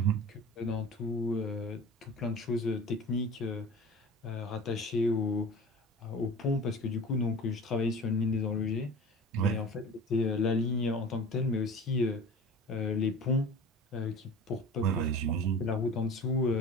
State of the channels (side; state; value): both; normal; correlation 0.37